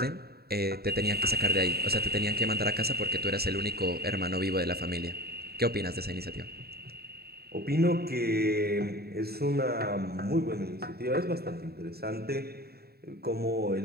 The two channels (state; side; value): late; left; 0.46 ms